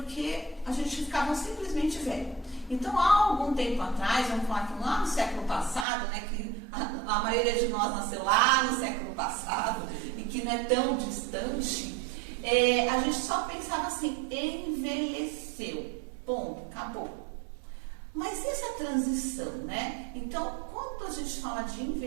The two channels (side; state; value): left; drops out; at 5.9 s